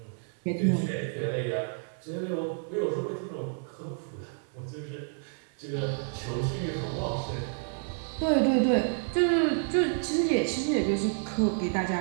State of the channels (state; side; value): silent; left; 58 dB below the other